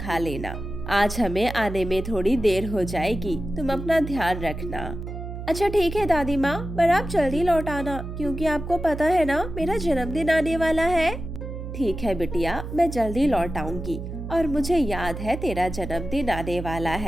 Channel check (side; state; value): right; noise; hum, 8 dB below the sound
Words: लेना। आज हमें आने में थोड़ी देर हो जाएगी, तुम अपना ध्यान रखना। अच्छा ठीक है दादी माँ, पर आप जल्दी लौट आना, क्योंकि आपको पता है ना मेरा जन्मदिन आने वाला है। ठीक है बिटिया, मैं जल्दी लौट आऊंगी। और मुझे याद है तेरा जन्मदिन आने वाला